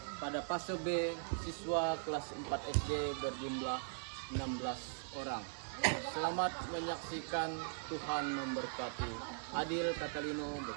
pada fase B siswa kelas 4 SD berjumlah 16 orang. Selamat menyaksikan, Tuhan memberkati. Adil Katalino,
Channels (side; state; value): left; silent; 51 dB below the other